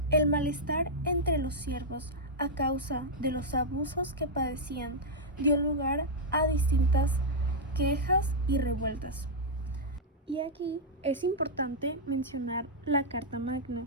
El malestar entre los siervos a causa de los abusos que padecían dio lugar a distintas quejas y revueltas. Y aquí es importante mencionar la Carta Magna.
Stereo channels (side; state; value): both; normal; correlation -0.05